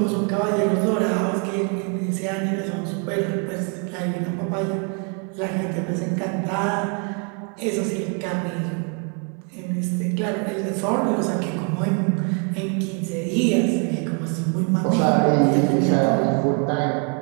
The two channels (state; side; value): quieter; left; 37.4 dB